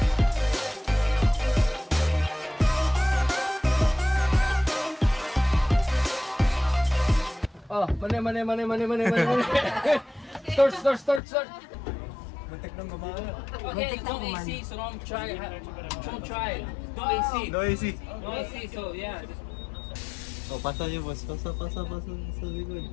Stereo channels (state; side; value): drops out; right; at 11.2 s